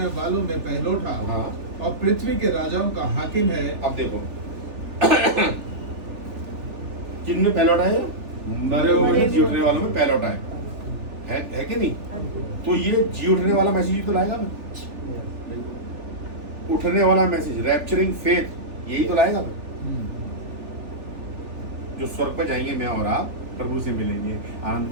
वालों में पहलौठा और पृथ्वी के राजाओं का हाकिम है। अब देखो किन में पहलौठा है? मरे हुए में जी उठने वालों में पहलौठा है कि नहीं? तो ये जी उठने वाला मैसेज ही तो लाएगा मैं, उठने वाला मैसेज, रैप्चरिंग फेथ, यही तो लाएगा मैं। जो स्वर्ग पर जाएंगे मैं और आप, प्रभु से मिलेंगे, आनंद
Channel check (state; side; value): late; left; 3.4 ms